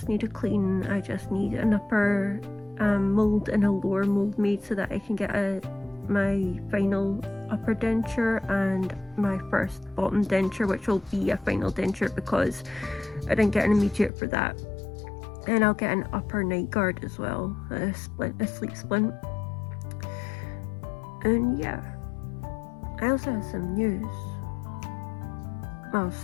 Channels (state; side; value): drops out; right; at 14.1 s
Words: need a clean. I just need an upper mold and a lower mold made so that I can get my final upper denture and my first bottom denture, which will be a final denture because I didn't get an immediate for that. And I'll get an upper night guard as well, a sleep splint. And yeah, I also have some news. Well,